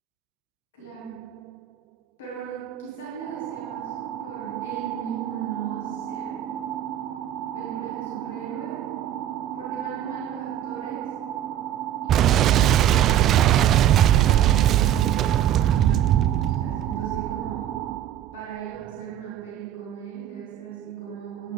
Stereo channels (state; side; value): quieter; left; 11.1 dB